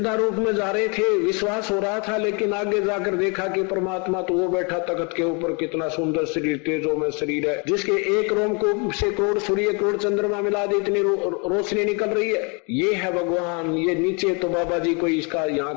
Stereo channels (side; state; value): right; quieter; 33.1 dB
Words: रूप में जा रहे थे विश्वास हो रहा था, लेकिन आगे जाकर देखा कि परमात्मा तो वो बैठा तख्त के ऊपर, कितना सुंदर शरीर, तेजों में शरीर है, जिसके एक रोम को से कोड़ सूर्य कोड़ चंद्रमा मिला दे इतनी रोशनी निकल रही है। ये है भगवान, ये नीचे तो बाबा जी कोई इसका यहाँ